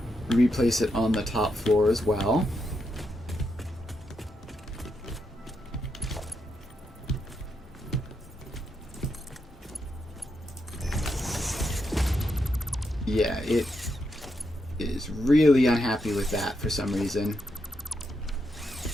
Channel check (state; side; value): normal; both; correlation 0.82